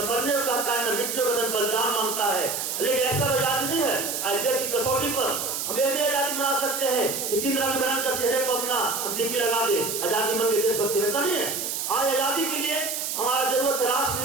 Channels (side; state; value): right; noise; hiss, 3 dB below the sound